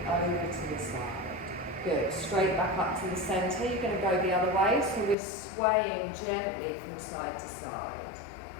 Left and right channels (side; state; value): right; drops out; at 5.2 s